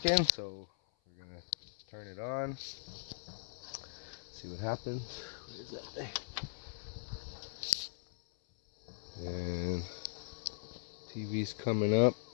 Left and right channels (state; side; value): silent; right; 52 dB below the other